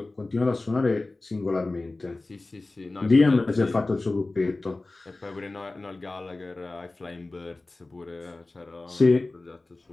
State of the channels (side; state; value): right; quieter; 3.1 dB